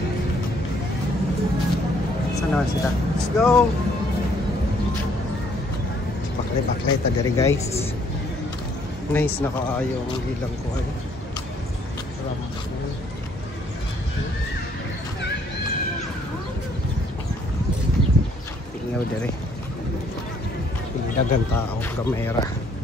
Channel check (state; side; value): normal; both; correlation 0.65